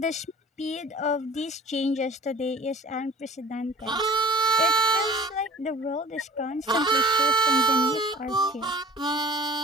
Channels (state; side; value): normal; both; correlation 0.44